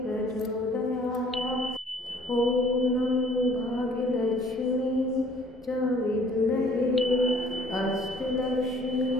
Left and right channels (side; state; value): both; normal; correlation 0.56